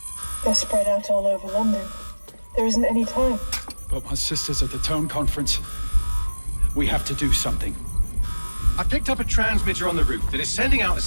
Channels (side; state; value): both; inverted; correlation -1.00